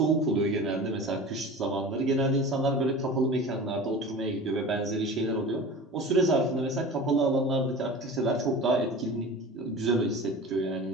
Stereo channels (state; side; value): normal; both; correlation 0.36